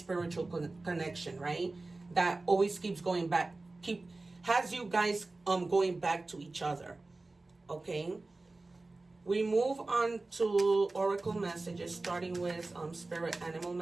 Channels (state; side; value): quieter; left; 3.2 dB